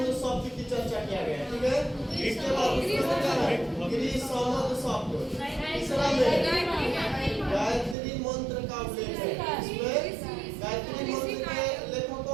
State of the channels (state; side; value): drops out; left; at 8.0 s